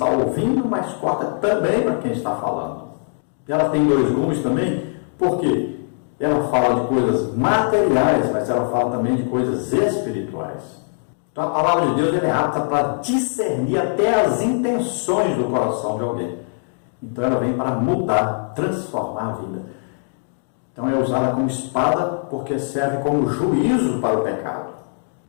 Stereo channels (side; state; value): right; silent; digital silence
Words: ouvindo, mas corta também para quem está falando. Ela tem dois gumes também, porque ela fala de coisas materiais, mas ela fala também de coisas espirituais. Então a palavra de Deus é apta para discernir até as intenções do coração de alguém. Então ela vem para mudar, transformar a vida. Então é usada como espada porque serve como juízo para o pecado.